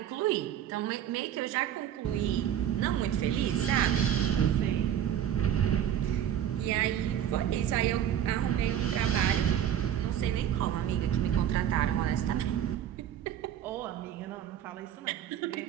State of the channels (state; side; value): quieter; left; 10.3 dB